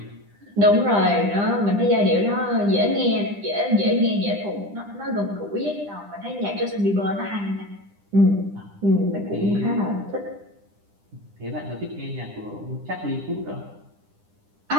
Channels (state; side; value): late; left; 10 ms